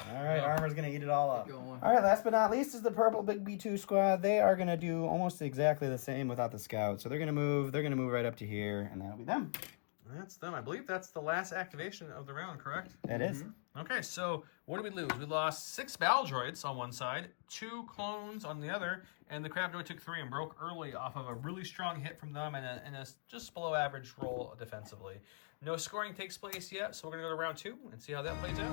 All right, armor's going to eat it all up. Going. All right, last but not least is the purple Big B2 squad. They are going to do almost exactly the same without the scout. So they're going to move. They're going to move right up to here, and that'll be them. That's them. I believe that's the last activation of the round, correct? That is. Okay, so what did we lose? We lost 6 battle droids on one side, 2 clones on the other, and the crab droid took 3 and broke early off of a really strong hit from them and a just below average roll defensively. No scoring takes place yet, so we're going to go to round 2 and see how that plays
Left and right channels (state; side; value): silent; right; digital silence